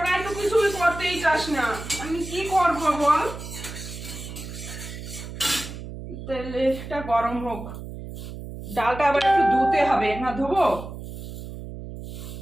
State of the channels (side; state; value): right; noise; hum, 10 dB below the sound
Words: একটু কিছু করতেই চাস না, আমি কি করব বল? তেলটা গরম হোক, ডালটা আবার একটু ধুতে হবে না? ধোবো,